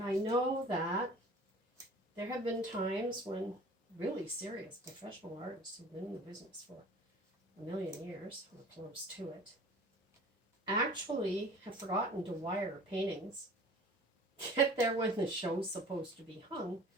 know that there have been times when really serious professional artists who've been in the business for a million years, or close to it, actually have forgotten to wire paintings, get there when the show's supposed to be hung,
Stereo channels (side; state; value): both; normal; correlation 0.45